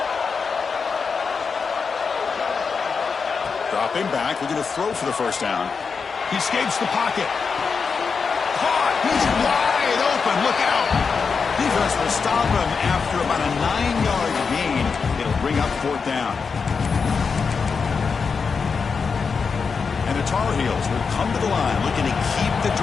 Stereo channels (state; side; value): quieter; right; 5.4 dB